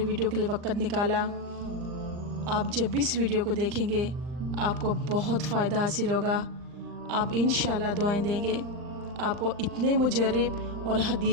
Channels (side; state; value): left; late; 39 ms